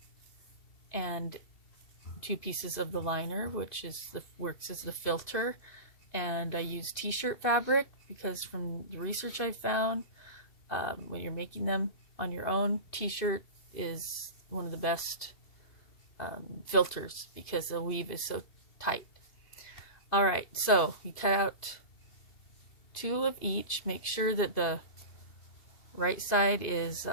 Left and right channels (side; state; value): right; late; 2.7 ms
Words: and 2 pieces of the liner, which works as the filter. And I use t-shirt fabric because from the research I found, when you're making them on your own, t-shirt is one of the best filters because the weave is so tight. All right, so you cut out 2 of each. Make sure that the right side